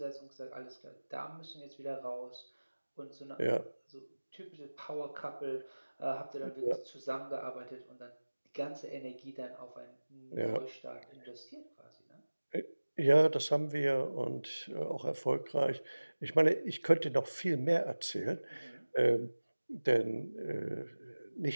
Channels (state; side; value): inverted; both; correlation -1.00